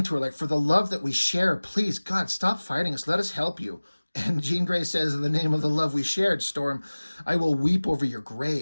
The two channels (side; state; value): both; inverted; correlation -1.00